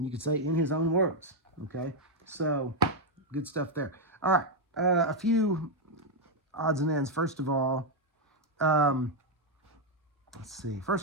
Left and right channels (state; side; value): normal; both; correlation 0.00